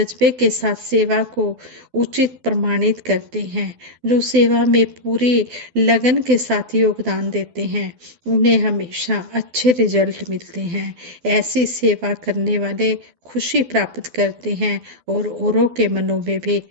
के साथ सेवा को उचित प्रमाणित करते हैं, जो सेवा में पूरी लगन के साथ योगदान देते हैं, उन्हें हमेशा अच्छे रिजल्ट मिलते हैं। ऐसी सेवा करने वाले खुशी प्राप्त करते हैं और औरों के मनों में भी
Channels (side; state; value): left; late; 12 ms